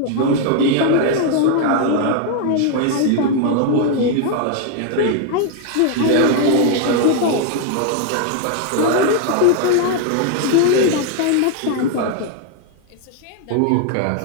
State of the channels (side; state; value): both; different; correlation 0.00